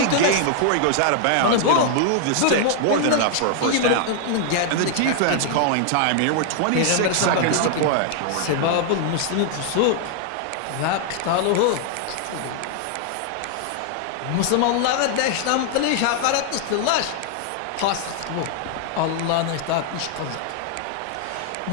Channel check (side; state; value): both; different; correlation 0.00